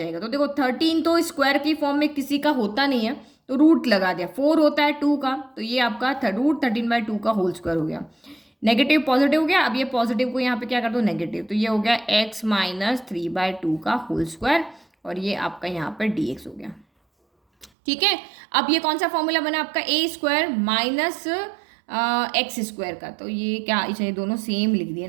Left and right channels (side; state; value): left; drops out; at 17.7 s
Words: तो देखो 13 तो स्क्वायर की फॉर्म में किसी का होता नहीं है, तो रूट लगा दिया। 4 होता है 2 का, तो ये आपका √13/2 का होल स्क्वायर हो गया। नेगेटिव पॉजिटिव हो गया, अब ये पॉजिटिव को यहाँ पे क्या कर दो, नेगेटिव। तो ये हो गया x माइनस 3/2 का होल स्क्वायर और ये आपका यहाँ पर dx हो गया, ठीक है। अब ये कौन सा फॉर्मूला बना आपका, a square minus x square का। तो ये क्या, ये दोनों सेम लिख दिया